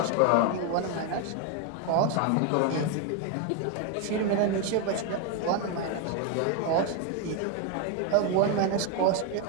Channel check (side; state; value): both; different; correlation 0.01